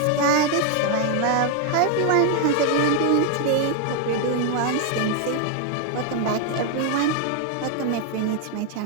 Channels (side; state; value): both; different; correlation 0.01